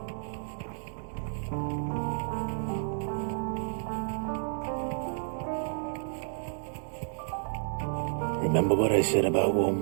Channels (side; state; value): left; silent; digital silence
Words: Remember what I said about warm